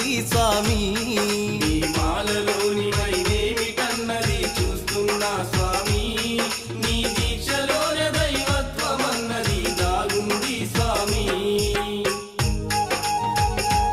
స్వామి నీ మాలలోని మహిమేమిటన్నది చూస్తున్నా స్వామి నీ దీక్షలోన దైవత్వమన్నది దాగుంది స్వామి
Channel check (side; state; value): both; identical; correlation 1.00